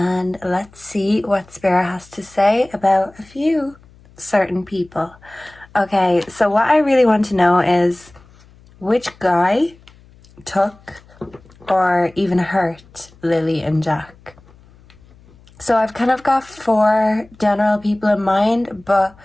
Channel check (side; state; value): left; noise; hum, 27 dB below the sound